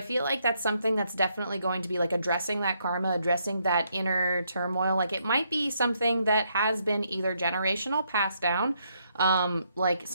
feel like that's something that's definitely going to be like addressing that karma, addressing that inner turmoil. Like, it might be something that has been either generational, passed down, like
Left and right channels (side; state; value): both; inverted; correlation -0.75